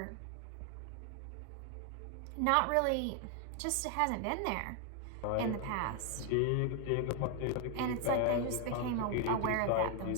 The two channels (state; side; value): different; both; correlation 0.01